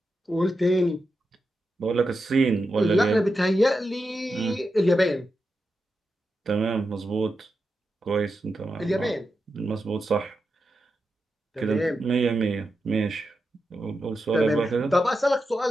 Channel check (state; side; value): normal; both; correlation 0.88